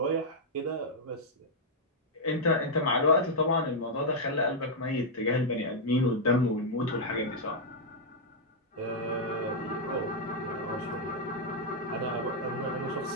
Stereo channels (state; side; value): normal; both; correlation -0.05